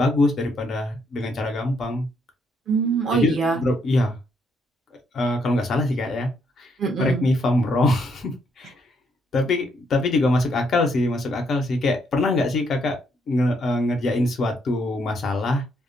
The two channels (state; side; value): normal; both; correlation 0.73